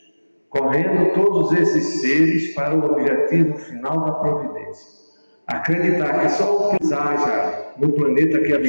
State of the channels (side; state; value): both; inverted; correlation -1.00